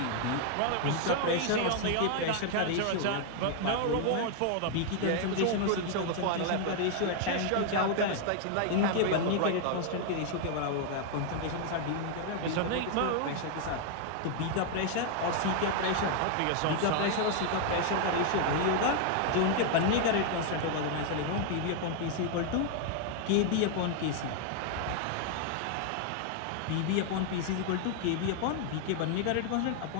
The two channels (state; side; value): different; both; correlation 0.00